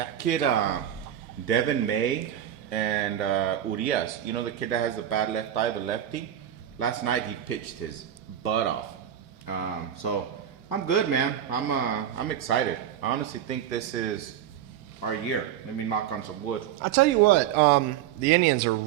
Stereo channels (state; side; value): quieter; left; 10.6 dB